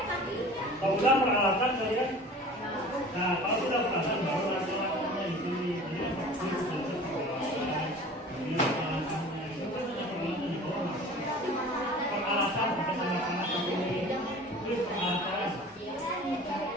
kalau sudah peralatan saya kalau sudah peralatan baru langkah-langkahnya ini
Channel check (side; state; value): both; normal; correlation 0.42